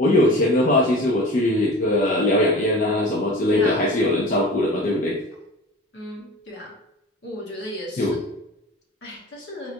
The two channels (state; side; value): normal; both; correlation 0.38